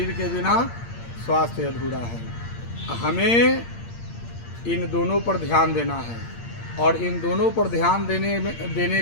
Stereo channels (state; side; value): late; right; 8.7 ms